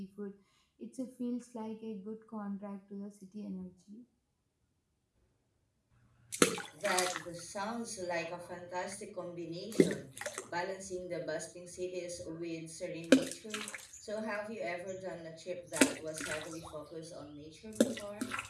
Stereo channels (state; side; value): identical; both; correlation 1.00